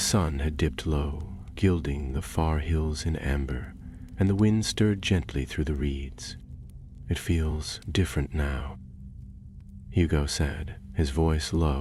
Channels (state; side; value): identical; both; correlation 1.00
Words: had dipped low, gilding the far hills in amber, and the wind stirred gently through the reeds. "It feels different now," Hugo said, his voice